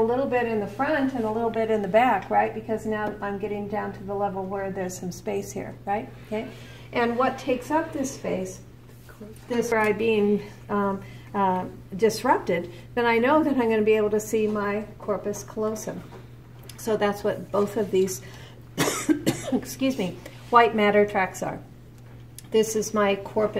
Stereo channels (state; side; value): identical; both; correlation 1.00